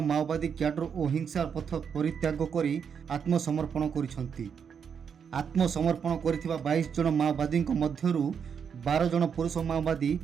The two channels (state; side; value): quieter; left; 7.0 dB